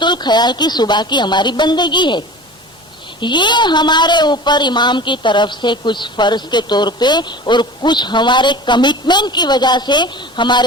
ख्याल की सुबह की हमारी बंदगी है। ये हमारे ऊपर इमाम की तरफ से कुछ फर्ज के तौर पे और कुछ हमारे कमिटमेंट की वजह से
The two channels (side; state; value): both; normal; correlation 0.38